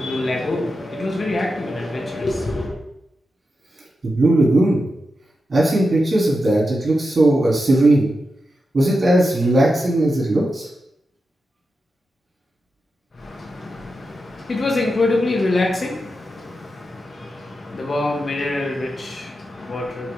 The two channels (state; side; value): normal; both; correlation 0.89